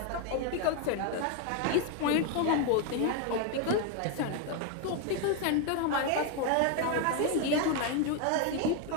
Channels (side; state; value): both; different; correlation 0.01